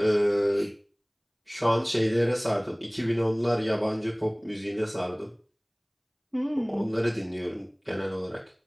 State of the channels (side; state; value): both; identical; correlation 1.00